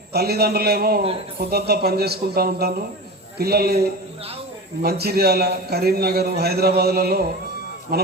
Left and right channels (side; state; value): both; normal; correlation 0.30